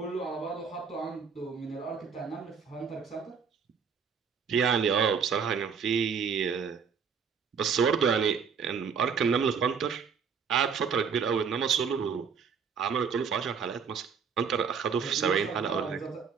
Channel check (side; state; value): left; quieter; 6.3 dB